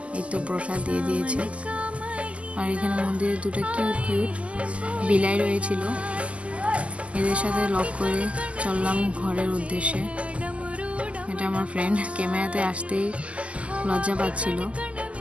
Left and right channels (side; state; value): left; late; 0.060 ms